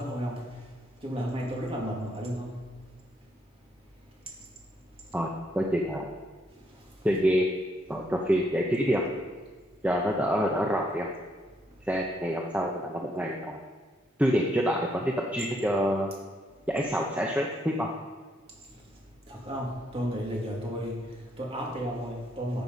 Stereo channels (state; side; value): normal; both; correlation 0.73